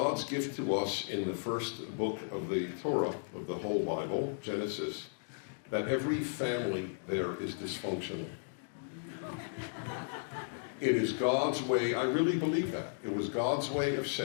gift to us in the first book of the Torah, of the whole Bible, Genesis, that every family there is dysfunctional. It is God's way, I really believe that. It was God's way of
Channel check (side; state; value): right; silent; digital silence